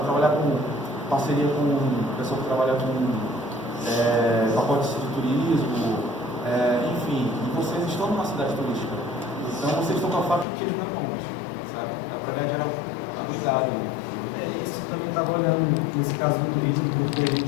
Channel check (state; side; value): drops out; right; at 10.5 s